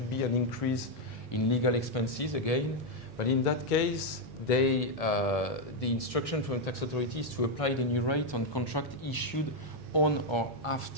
be an increase in legal expenses again. But in that case, the instruction from the tax authority is to apply the new rate on contract issued on or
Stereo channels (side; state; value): both; normal; correlation 0.01